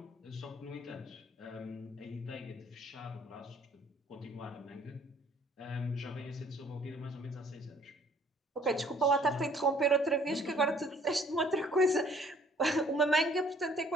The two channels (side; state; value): both; normal; correlation 0.58